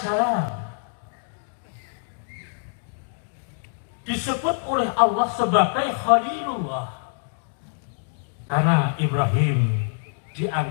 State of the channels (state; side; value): silent; right; digital silence